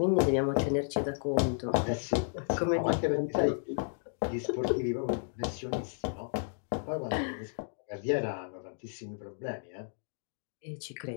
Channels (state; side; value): silent; right; digital silence